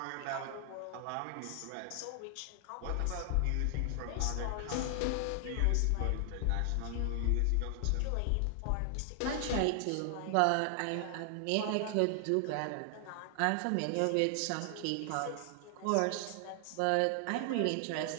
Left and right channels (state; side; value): different; both; correlation 0.00